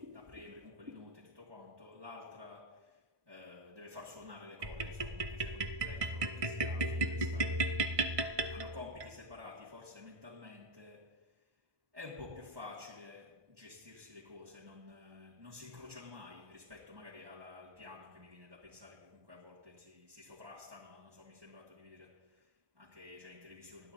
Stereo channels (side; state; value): left; late; 1.2 ms